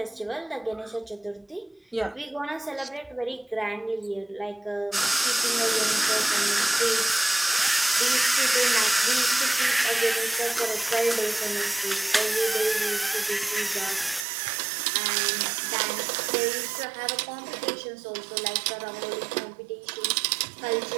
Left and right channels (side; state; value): left; drops out; at 14.2 s